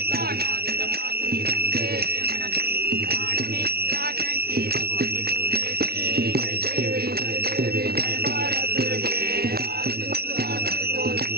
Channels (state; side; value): late; left; 0.45 ms